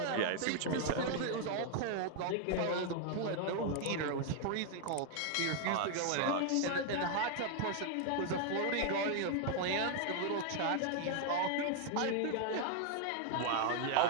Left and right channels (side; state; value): both; different; correlation 0.00